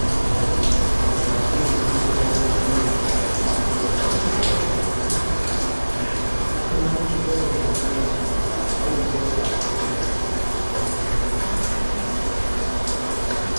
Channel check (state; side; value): inverted; both; correlation -1.00